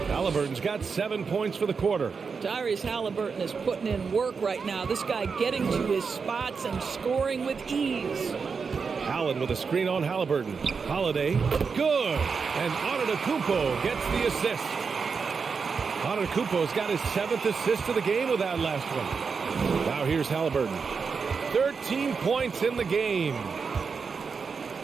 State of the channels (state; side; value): quieter; left; 5.4 dB